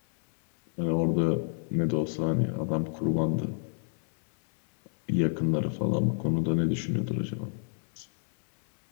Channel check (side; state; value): right; silent; 58 dB below the other